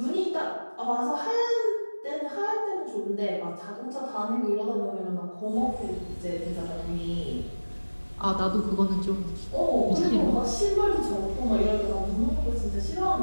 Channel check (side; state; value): both; inverted; correlation -1.00